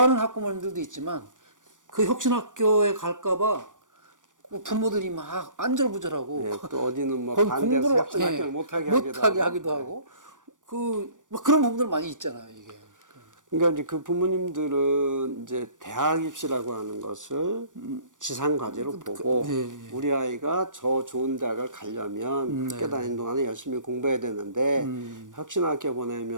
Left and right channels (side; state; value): left; late; 0.87 ms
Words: 학부모님들도 있지만 그 혁신학교에 갈까봐 부모들이 막 안절부절하고 예, 또 어디는 뭐 거기 반대해서 공부를 혁신학교를 예, 못하게 하기도 하고 막 그런 부분들 많이 있잖아요. 이게. 그러니까 이제 그 부모님들은 이제 대학 입시라고 하는 것을 지상 과제로 보고 예, 예. 우리 아이가 저 좋은 대학을 가려면 네. 학교 다니는 동안에 열심히 공부해야 되는데 혁신학교